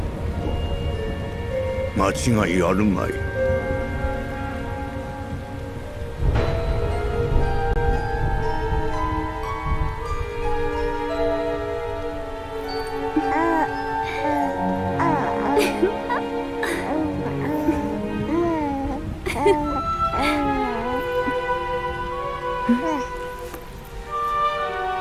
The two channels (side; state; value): both; identical; correlation 1.00